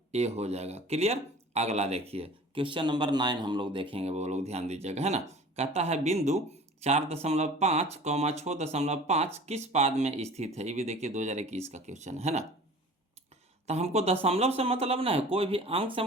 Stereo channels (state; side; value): normal; both; correlation 0.43